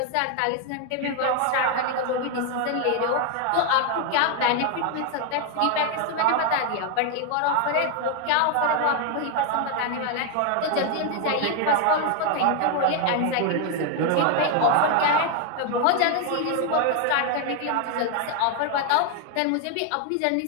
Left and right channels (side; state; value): both; different; correlation 0.01